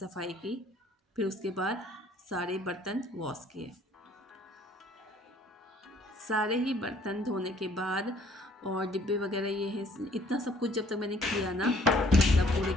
की। फिर उसके बाद सारे बर्तन वॉश किए। सारे ही बर्तन धोने के बाद और डिब्बे वगैरह ये है, इतना सब कुछ जब तक मैंने किया ना, मतलब पूरे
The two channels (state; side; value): normal; both; correlation 0.60